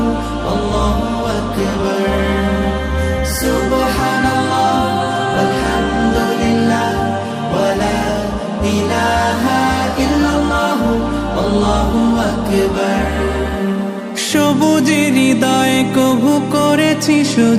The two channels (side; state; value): both; identical; correlation 1.00